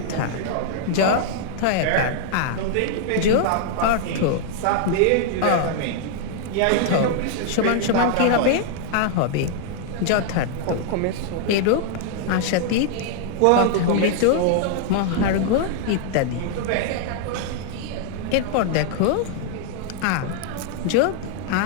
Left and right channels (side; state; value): both; different; correlation -0.01